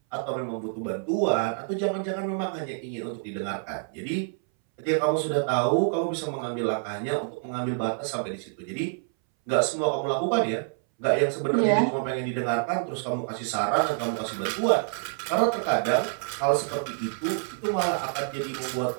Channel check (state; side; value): silent; left; 60 dB below the other